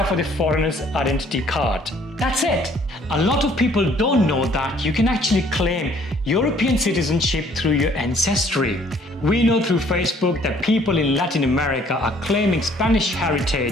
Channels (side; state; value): both; normal; correlation 0.60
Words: for the foreigner's identity card. That's it. A lot of people don't know that you can actually claim European citizenship through your ancestry. We know through Facebook that people in Latin America are claiming Spanish